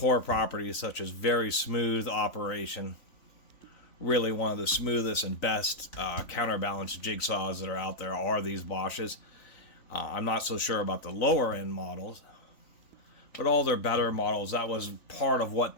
properties, such as very smooth operation. Really one of the smoothest and best counterbalance jigsaws that are out there are these Bosches. I'm not so sure about the lower end models, but all their better models, that was part of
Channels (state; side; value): late; right; 3.5 ms